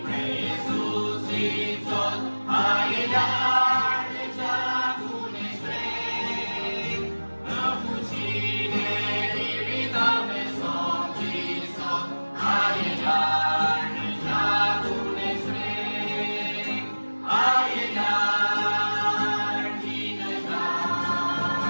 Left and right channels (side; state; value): both; inverted; correlation -1.00